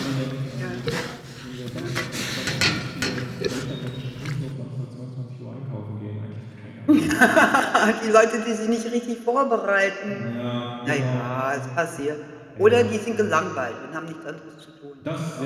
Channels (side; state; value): both; identical; correlation 1.00